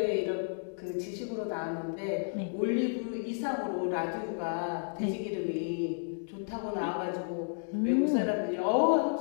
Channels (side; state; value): right; silent; digital silence